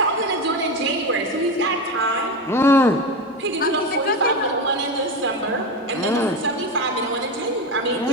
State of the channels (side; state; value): both; normal; correlation 0.19